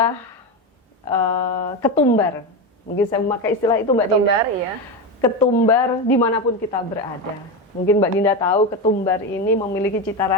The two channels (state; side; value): normal; both; correlation 0.16